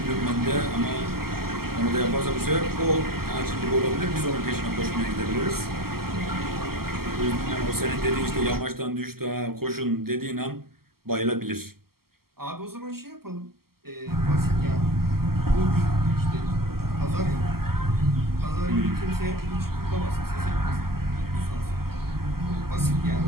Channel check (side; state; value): left; late; 0.94 ms